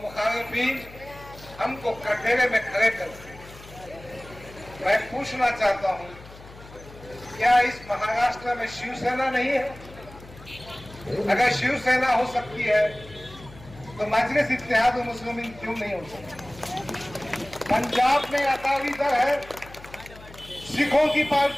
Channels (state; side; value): noise; left; hum, 19 dB below the sound